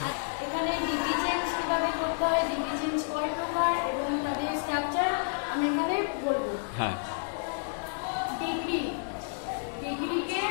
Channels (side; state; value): right; silent; digital silence